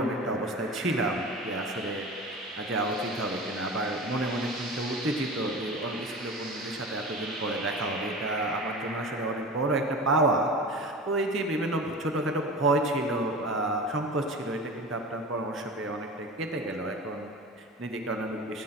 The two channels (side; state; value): both; normal; correlation 0.33